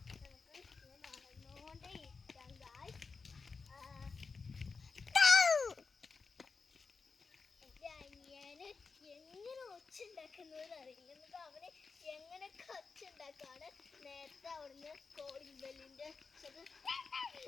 നമുക്ക് ഇങ്ങനെ നടന്നുകൊണ്ടേ ഇരിക്കാം. എൻ്റെ അനിയന് എങ്ങനെ ഒച്ചുണ്ടാക്കുന്നതെന്ന് അറിയില്ല. എന്നിട്ട് അവന് എങ്ങനെയൊക്കെ ഒച്ചുണ്ടാക്കാണ്. നേരത്തെ അവിടുന്ന് കോളിംഗ് ബെല്ലിൻ്റെ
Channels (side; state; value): right; quieter; 4.7 dB